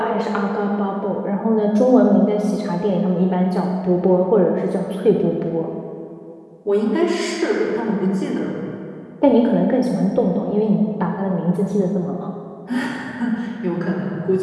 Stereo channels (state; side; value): identical; both; correlation 1.00